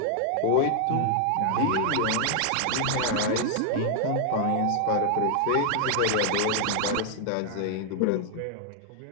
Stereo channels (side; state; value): both; different; correlation 0.00